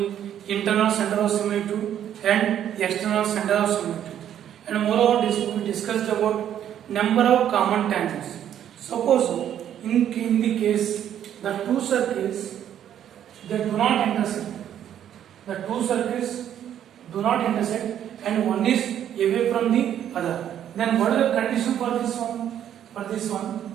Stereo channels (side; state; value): left; quieter; 10.3 dB